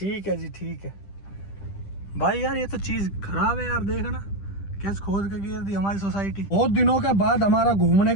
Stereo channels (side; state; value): right; late; 10 ms